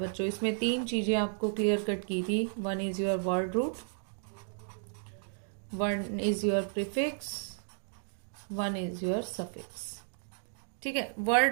इसमें 3 चीजें आपको क्लियर कट की थी। One is your word root, one is your prefix, one is your suffix. ठीक है,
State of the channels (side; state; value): left; silent; digital silence